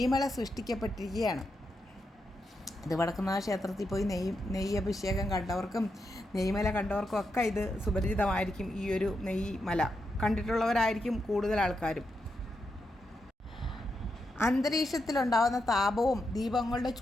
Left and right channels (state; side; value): normal; both; correlation 0.84